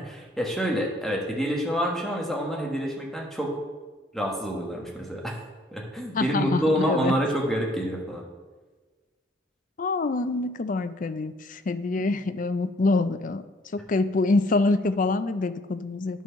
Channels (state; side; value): normal; both; correlation 0.62